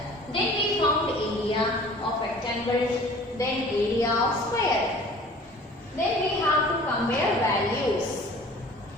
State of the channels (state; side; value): normal; both; correlation 0.47